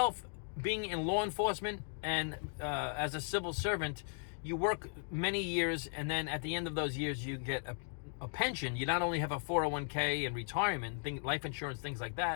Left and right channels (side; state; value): right; silent; 53 dB below the other